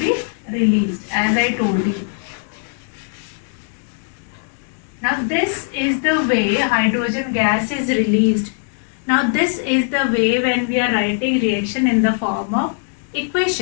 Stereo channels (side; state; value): right; silent; 63 dB below the other